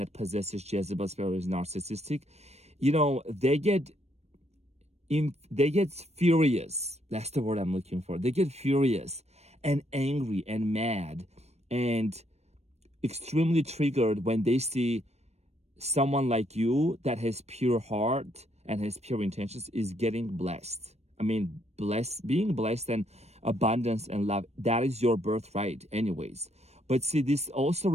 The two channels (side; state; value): left; late; 0.31 ms